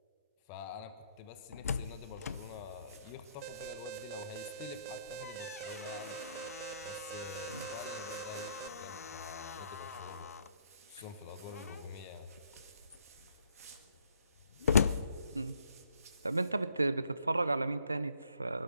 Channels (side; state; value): both; inverted; correlation -0.69